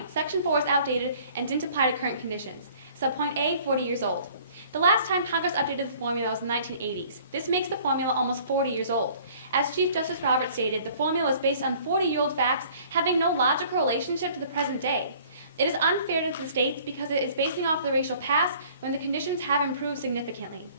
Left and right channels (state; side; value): inverted; both; correlation -0.53